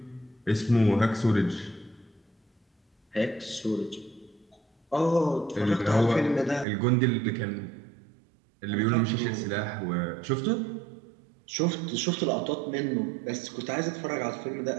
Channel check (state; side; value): drops out; left; at 6.7 s